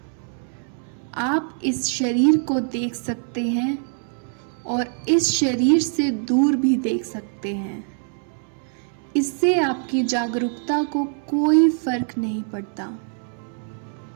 आप इस शरीर को देख सकते हैं और इस शरीर से दूर भी देख सकते हैं। इससे आपकी जागरूकता को कोई फर्क नहीं पड़ता।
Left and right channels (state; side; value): silent; left; 58 dB below the other